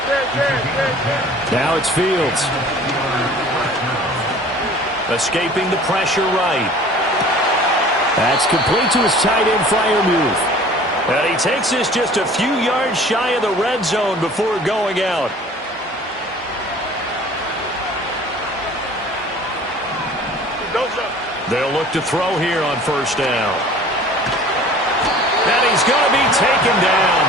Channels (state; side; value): normal; both; correlation 0.47